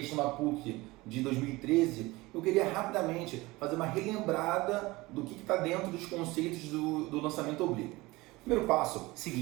da PUC de 2013, eu queria rapidamente fazer uma relembrada do que está dentro dos conceitos do lançamento oblíquo. Primeiro passo,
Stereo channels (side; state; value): left; quieter; 21.3 dB